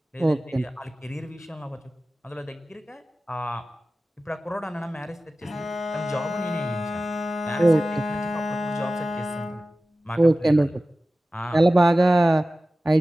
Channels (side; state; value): both; normal; correlation 0.96